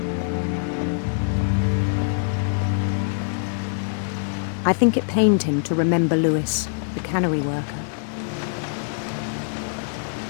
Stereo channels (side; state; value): right; silent; 63 dB below the other